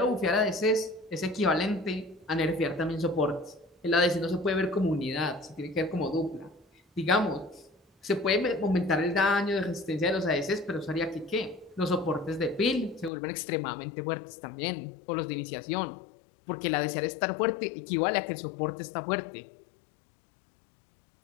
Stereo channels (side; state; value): right; drops out; at 13.1 s